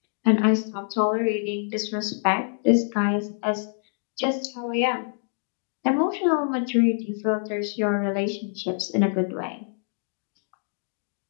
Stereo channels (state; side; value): silent; right; digital silence